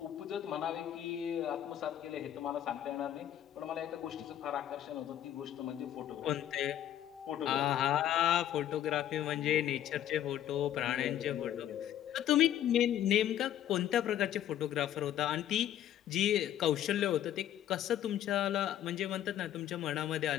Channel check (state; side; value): quieter; right; 11.4 dB